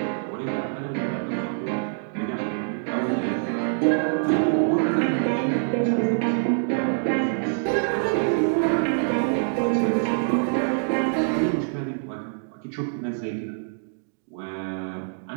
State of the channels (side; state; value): left; silent; digital silence